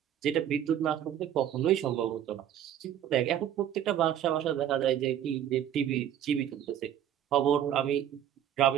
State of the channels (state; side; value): quieter; left; 10.5 dB